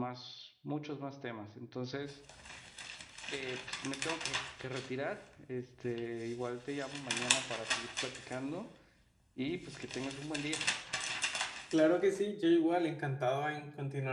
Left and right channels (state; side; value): identical; both; correlation 1.00